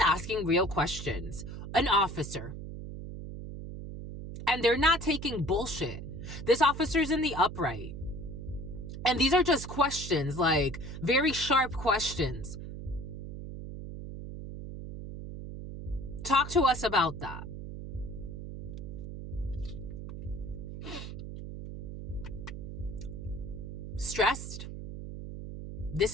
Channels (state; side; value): noise; right; hum, 9 dB below the sound